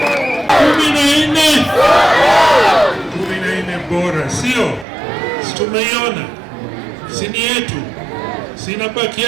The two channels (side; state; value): left; drops out; at 4.9 s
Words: Bora sio, tumeiona sini yetu, sinabaki